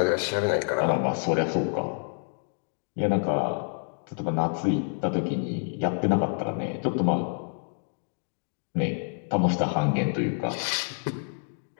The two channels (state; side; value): silent; right; 59 dB below the other